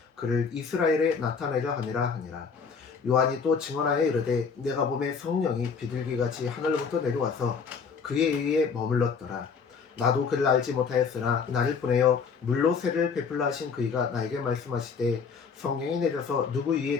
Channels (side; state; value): right; quieter; 5.7 dB